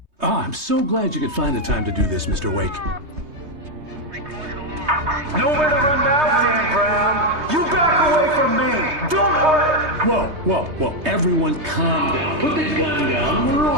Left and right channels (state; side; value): late; left; 3.2 ms